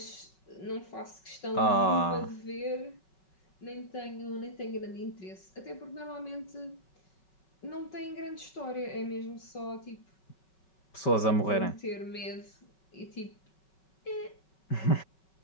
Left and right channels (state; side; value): late; right; 5.2 ms